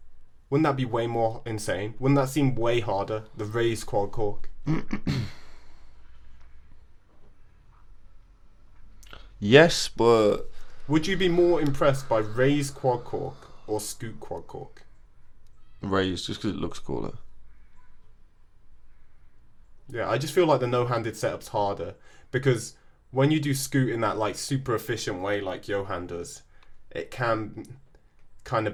Wouldn't that be way more insane? Wouldn't that seem way harder? The raise quad cork. yes, but Would you be more impressed by raise quad cork or scoot quad cork? raised just because it looks cooler. Yeah, I just feel like the no-handed setup's harder because when you do scoot in that like super efficient way like Johan does, it can kind of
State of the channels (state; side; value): identical; both; correlation 1.00